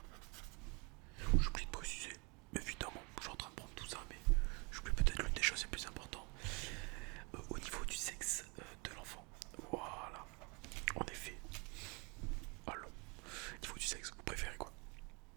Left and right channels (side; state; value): left; quieter; 30.5 dB